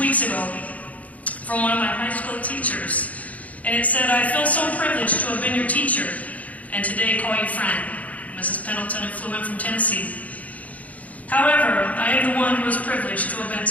ago from one of my high school teachers, and it said, "I feel so privileged to have been your teacher, and today call you friend." Mrs. Pendleton had flew in from Tennessee. However, I am the one who is privileged to have been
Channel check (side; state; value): right; late; 0.071 ms